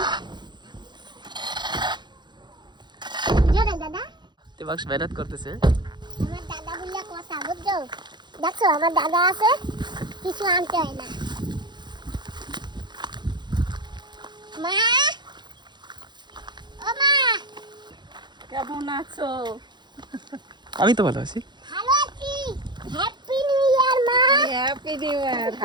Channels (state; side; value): late; left; 0.21 ms